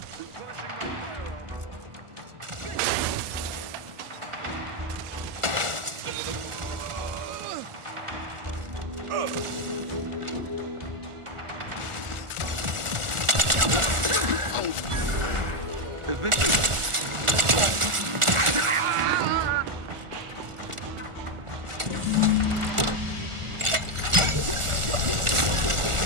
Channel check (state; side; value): late; left; 1.4 ms